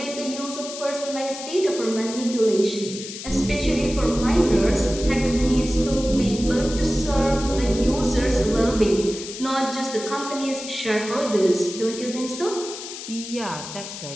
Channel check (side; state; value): left; noise; hiss, 10 dB below the sound